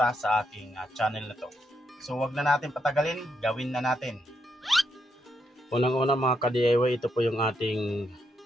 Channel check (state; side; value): normal; both; correlation 0.79